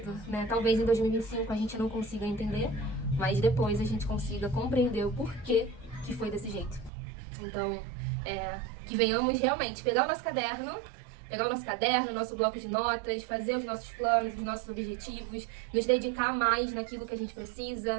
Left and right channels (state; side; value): drops out; left; at 6.9 s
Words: né? Talvez em 2025 a gente não consiga entender, mas depois a gente consiga compreender o porquê que foi desse jeito. Então, que venhamos realmente pegar o nosso caderno, nosso bloco de notas, fazer os nossos planos, os nossos objetivos, nos dedicar mais naquilo que a gente